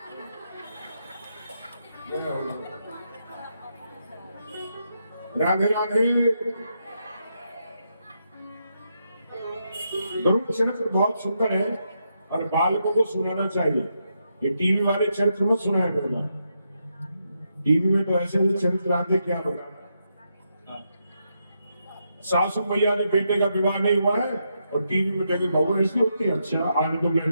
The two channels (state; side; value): inverted; both; correlation -0.82